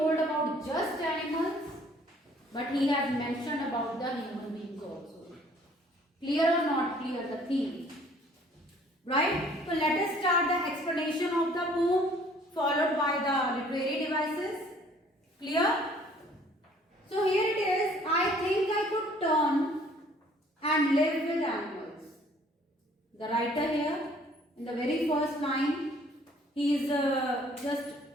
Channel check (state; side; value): normal; both; correlation 0.57